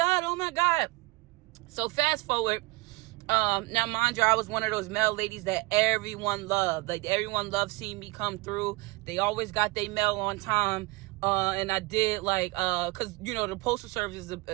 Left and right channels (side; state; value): left; quieter; 23.9 dB